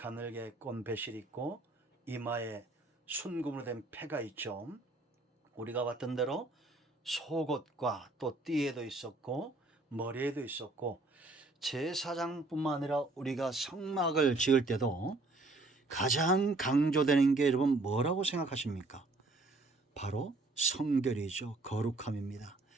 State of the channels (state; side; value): quieter; left; 3.1 dB